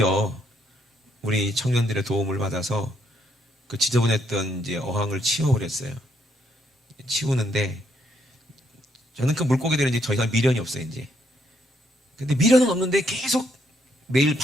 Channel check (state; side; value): normal; both; correlation 0.73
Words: 우리 청년들의 도움을 받아서 그 지저분했던 이제 어항을 치워버렸어요. 치우는데 저는 그 물고기들은 이제 더 이상 미련이 없어요, 이제. 근데 미련은 없는데 계속 매일